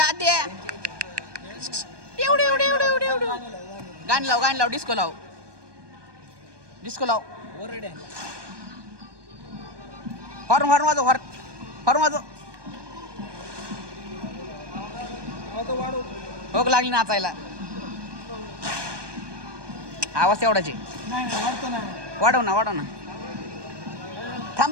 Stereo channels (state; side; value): late; left; 1.2 ms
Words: एवढे गाणी लाव डिस्को लाव हॉर्न वाजव भोग लागली नाचायला आवाज तेवढाच आहे. नाही नाही वाटतो ना वाढव ना वाढव ना.